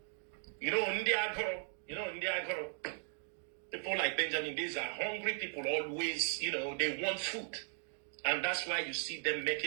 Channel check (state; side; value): silent; left; 53 dB below the other